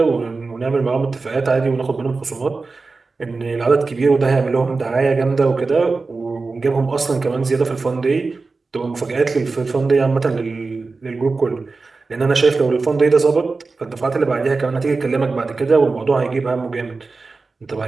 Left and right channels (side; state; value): left; quieter; 4.0 dB